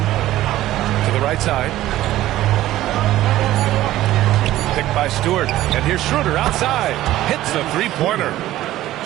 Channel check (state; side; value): quieter; left; 14.7 dB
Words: to the right side. Picked by Stewart. And here's Schroeder outside. Hits the three-pointer.